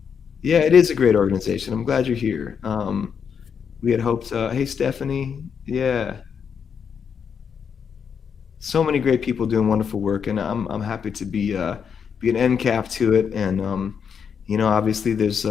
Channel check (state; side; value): quieter; right; 7.0 dB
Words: Yeah, it is a great organization. I'm glad you're here. We had hoped, hey, Stephanie. Yeah. So many great people doing wonderful work, and I'm happy to be an end cap to it. And obviously there's